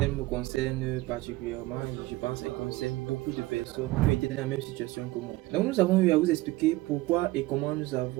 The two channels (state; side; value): quieter; left; 19.3 dB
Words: me concerne particulièrement et je pense qu'elle concerne beaucoup de personnes qui étaient dans la même situation que moi. Donc nous avons eu à vous expliquer pourquoi et comment nous